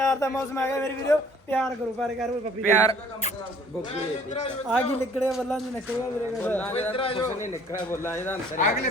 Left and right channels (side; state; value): both; normal; correlation 0.55